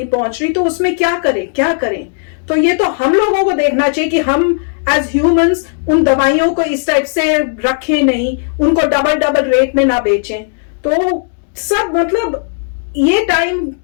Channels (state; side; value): silent; right; digital silence